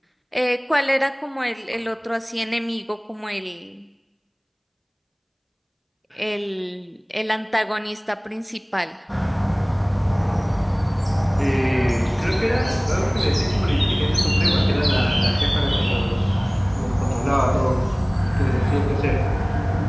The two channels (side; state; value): both; identical; correlation 1.00